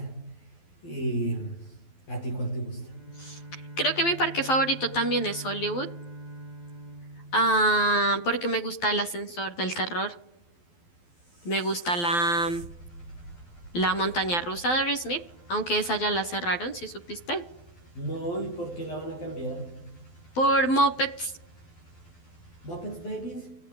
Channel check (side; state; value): right; late; 12 ms